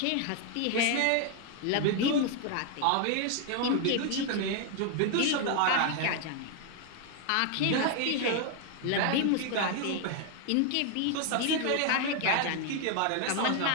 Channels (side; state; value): both; different; correlation 0.00